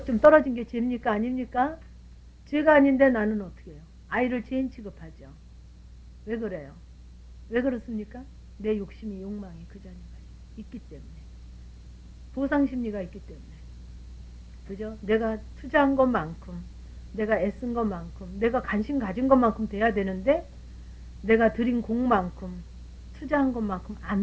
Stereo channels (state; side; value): identical; both; correlation 1.00